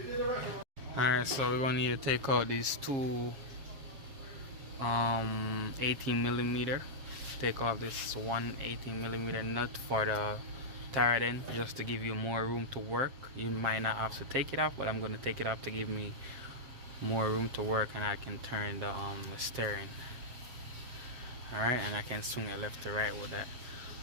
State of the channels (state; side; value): late; left; 7.5 ms